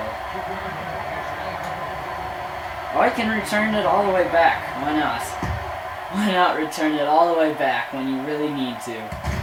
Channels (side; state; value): both; identical; correlation 1.00